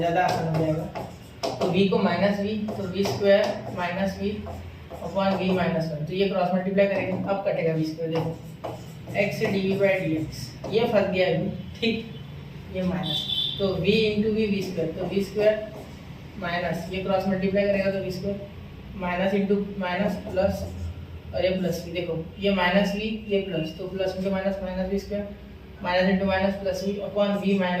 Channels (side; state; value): both; identical; correlation 1.00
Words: आसान हो जाएगा, तो v को माइनस v, तो v square minus v upon v minus one, तो ये क्रॉस मल्टीप्लाई करेंगे, अब कटेगा v स्क्वायर, देखो x dv बाई dx, ये फंस गया v, ठीक, ये माइनस, तो v इंटू वी स्क्वायर, तो v स्क्वायर माइनस, ये क्रॉस मल्टीप्लाई करेगा तो v square minus into minus plus, और ये प्लस वी, देखो ये माइनस वी ये प्लस, तो plus into minus minus v square, minus into minus plus v upon v